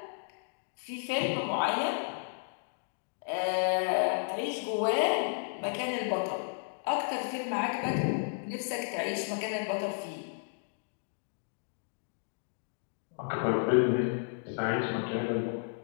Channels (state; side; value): silent; right; digital silence